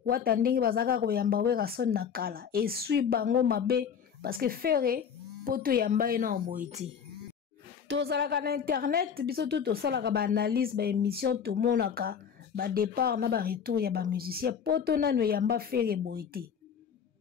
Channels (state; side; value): quieter; right; 7.4 dB